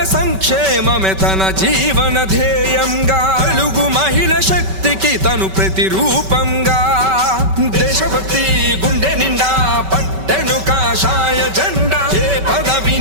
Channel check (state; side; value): late; left; 5.2 ms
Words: సంక్షేమమే తన జీవన ధ్యేయంగా, తెలుగు మహిళ శక్తికి తను ప్రతిరూపంగా, దేశభక్తి గుండె నిండా పట్టెను కాషాయ జెండా. ఏ